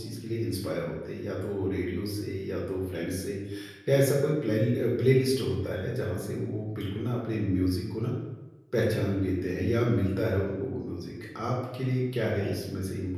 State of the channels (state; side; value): identical; both; correlation 1.00